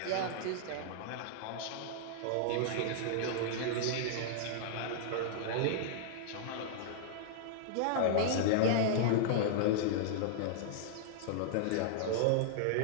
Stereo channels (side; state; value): both; different; correlation -0.01